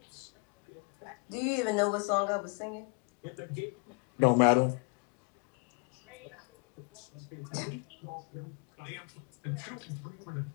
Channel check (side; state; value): right; quieter; 34.0 dB